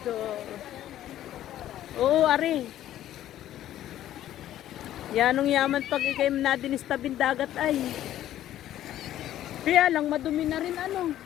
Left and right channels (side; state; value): right; quieter; 12.6 dB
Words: Oo, ari. Yanong yaman pag ikay nadinis tabing dagat ay. Kaya lang madumi na rin ano.